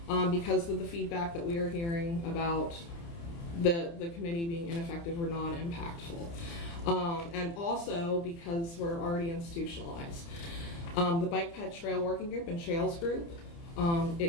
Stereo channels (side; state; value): right; late; 29 ms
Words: because of the feedback that we are hearing about the committee being ineffective or non-impactful. And also because we're already institutionalized. The Bike Ped Trail Working Group and Trails Group,